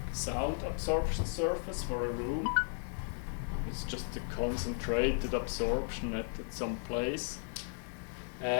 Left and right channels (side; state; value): right; silent; 54 dB below the other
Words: sound absorption surface for a room. It's just a concentrated absorption at some place.